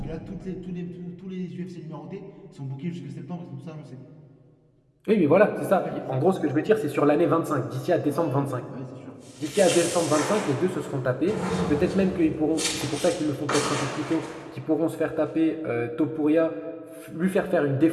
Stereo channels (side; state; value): both; identical; correlation 1.00